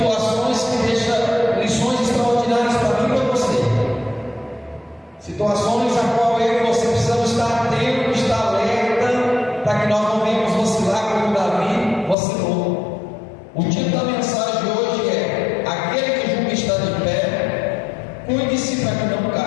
que deixam lições extraordinárias para mim e para você. Situações a qual eu e você precisamos estar atentos, estar alerta, para que nós não venhamos vacilar como Davi vacilou. O título da mensagem de hoje é: aquele que julga estar de pé, cuide-se para que não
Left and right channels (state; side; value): drops out; right; at 12.2 s